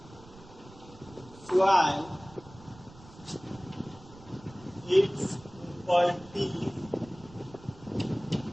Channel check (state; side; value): noise; right; rumble, 20 dB below the sound